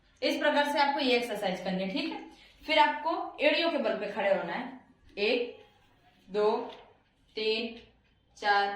इस प्रकार से आपको ये एक्सरसाइज करनी है। ठीक है, फिर आपको एड़ियों के बल पे खड़े होना है। 1 2 3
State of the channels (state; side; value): identical; both; correlation 1.00